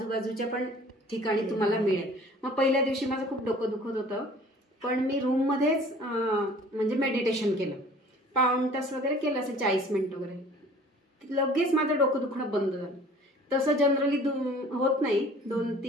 पण ठिकाणी तुम्हाला मिळेल. मग पहिल्या दिवशी माझं खूप डोकं दुखत होतं, पण मी रूममध्येच म्हणजे मेडिटेशन केलं, पाऊण तास वगैरे केलं, असं 40 मिनिट वगैरे. लगेच माझं डोकं दुखणं बंद झालं. तसं जनरली होत नाही,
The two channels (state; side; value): normal; both; correlation 0.49